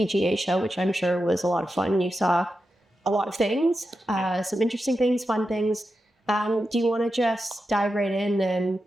Show, which I'm sure was a lot of fun. You saw a lot of things, some interesting things, fun things. Do you want to just dive right in and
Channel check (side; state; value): both; normal; correlation 0.89